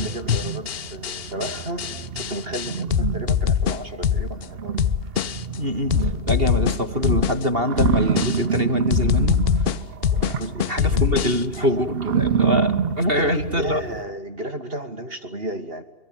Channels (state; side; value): late; left; 2.8 ms